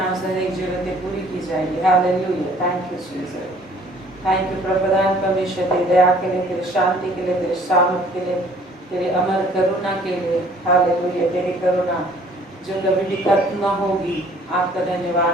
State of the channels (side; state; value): both; normal; correlation 0.56